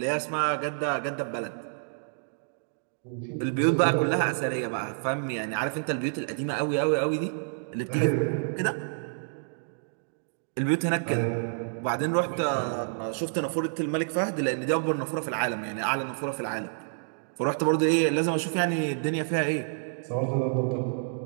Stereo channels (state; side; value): silent; left; digital silence